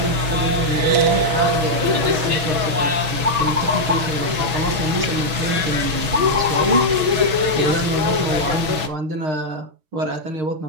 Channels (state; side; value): late; left; 6.1 ms